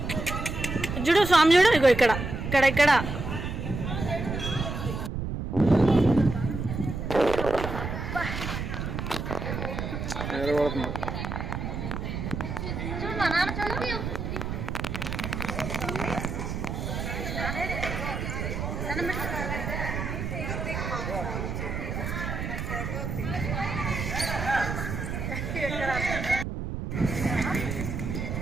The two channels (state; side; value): noise; right; rumble, 4 dB below the sound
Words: చూడు, స్వామి చూడు, ఇగో ఇక్కడ ఇక్కడ ఇక్కడ.